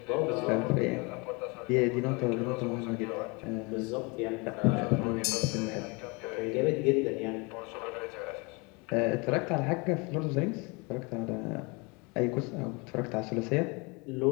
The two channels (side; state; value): right; quieter; 28.8 dB